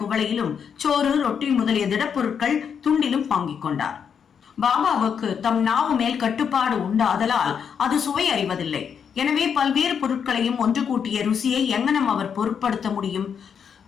குவளையிலும், சோறு, ரொட்டி முதலிய திடப்பொருட்கள் துண்டிலும் வாங்கிக் கொண்டார். பாபாவுக்கு தம் நாவு மேல் கட்டுப்பாடு உண்டாதலால் அது சுவை அறிவதில்லை. எனவே பல்வேறு பொருட்களையும் ஒன்று கூட்டிய ருசியை எங்கனம் அவர் பொருட்படுத்த முடியும்?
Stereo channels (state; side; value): quieter; right; 7.2 dB